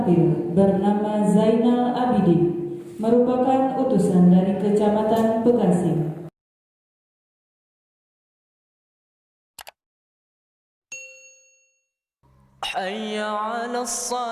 bernama Zainal Abidin, merupakan utusan dari Kecamatan Bekasi. حي على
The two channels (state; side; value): identical; both; correlation 1.00